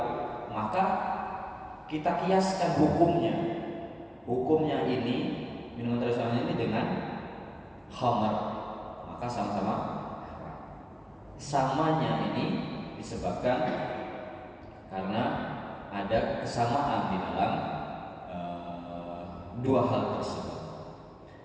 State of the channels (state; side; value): identical; both; correlation 1.00